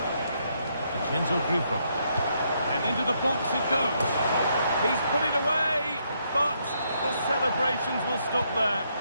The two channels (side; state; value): both; inverted; correlation -0.75